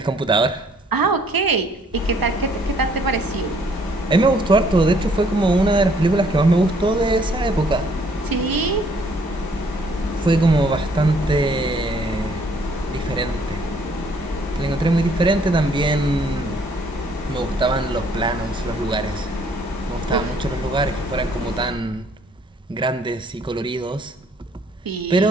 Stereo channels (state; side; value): normal; both; correlation 0.63